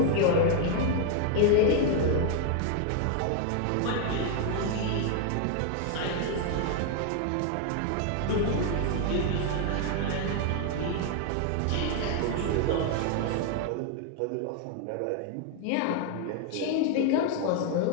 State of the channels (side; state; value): both; different; correlation 0.00